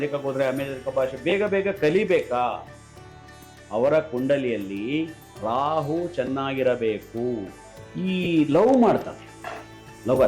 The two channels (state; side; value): identical; both; correlation 1.00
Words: ಹೋದರೆ ಅಮೆರಿಕ ಭಾಷೆ ಬೇಗ ಬೇಗ ಕಲಿಬೇಕಾ? ಅವರ ಕುಂಡಲಿಯಲ್ಲಿ ರಾಹು ಚೆನ್ನಾಗಿರಬೇಕು. ಈ ಲವ್ ಮಾಡ್ತಾರೆ